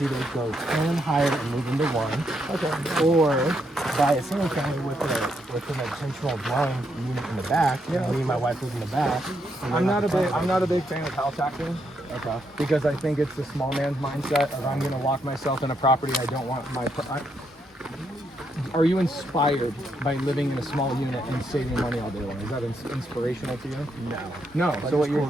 either go 10 higher and move into one, or buy a single family with an intentional dwelling unit in the back. Me and my wife live in the back. I'm not a big fan of house hacking. Because I think it's the small man's mindset of I'm going to lock myself in a property I don't want my. Are you inspired by living in a small unit and saving money all day long? Is that inspirational to you? No. But So what you're?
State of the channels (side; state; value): both; normal; correlation 0.78